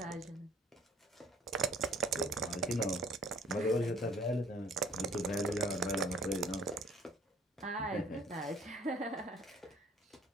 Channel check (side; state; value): both; normal; correlation 0.55